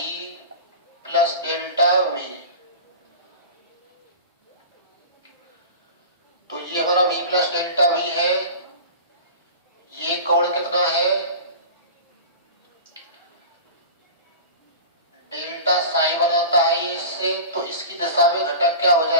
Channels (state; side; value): inverted; both; correlation -0.34